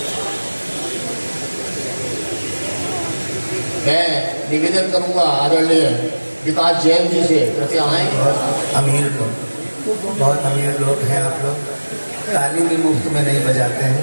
मैं निवेदन करूंगा आदरणीय विकास जैन जी से, कृपया आए। बहुत अमीर लोग हैं आप लोग, ताली भी मुफ्त में नहीं बजाते हैं।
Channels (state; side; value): inverted; both; correlation -1.00